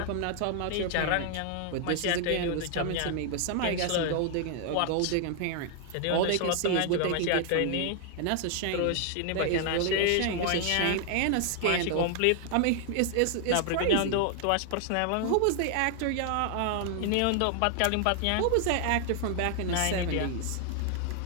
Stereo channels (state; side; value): different; both; correlation 0.00